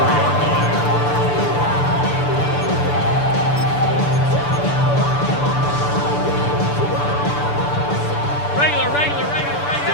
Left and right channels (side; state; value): right; late; 6.9 ms